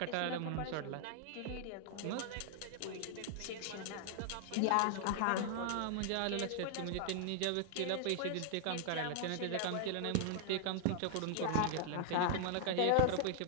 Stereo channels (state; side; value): different; both; correlation 0.00